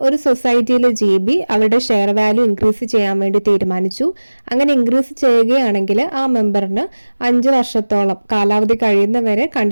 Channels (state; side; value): inverted; both; correlation -1.00